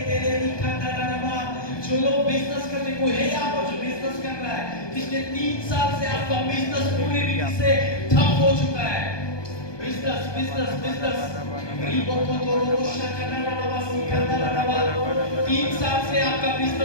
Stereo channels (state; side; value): late; right; 1.2 ms